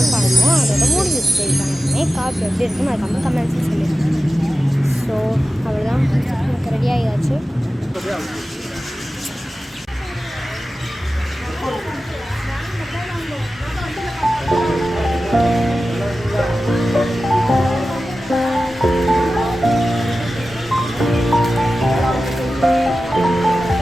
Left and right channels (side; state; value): both; normal; correlation 0.94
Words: பண்ணணும். அதோட முடிஞ்சிச்சு. மேக்கப் எப்படி இருக்குன்னு அதுக்கப்புறம் கமெண்ட்ஸ் சொல்லியிருக்கேன். ஸோ அவ்வளோதான், எனக்கு ரெடி ஆகியாச்சு.